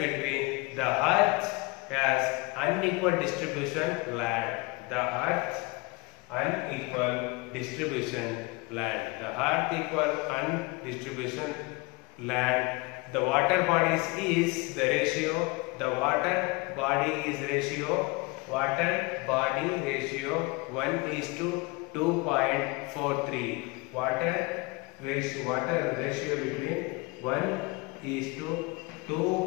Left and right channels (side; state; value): right; quieter; 26.0 dB